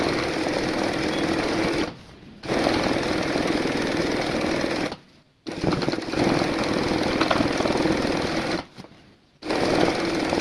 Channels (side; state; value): both; identical; correlation 1.00